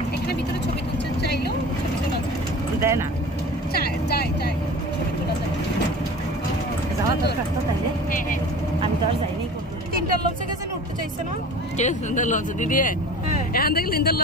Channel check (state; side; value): normal; both; correlation 0.39